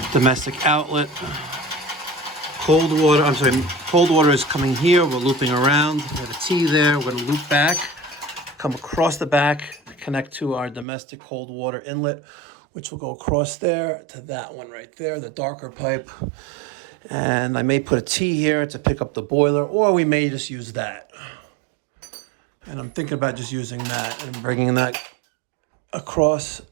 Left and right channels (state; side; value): drops out; left; at 10.9 s